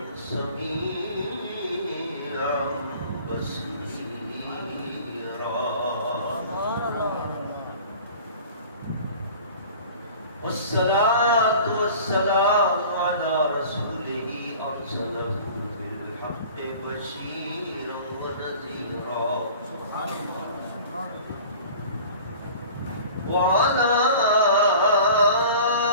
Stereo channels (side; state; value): both; inverted; correlation -0.43